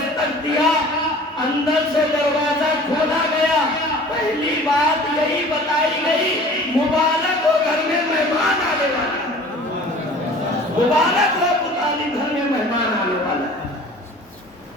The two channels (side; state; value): both; normal; correlation 0.45